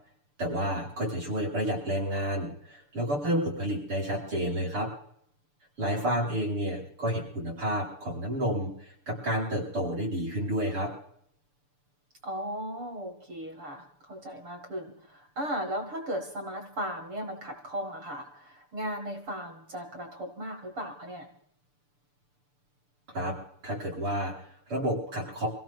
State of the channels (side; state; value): left; late; 6.8 ms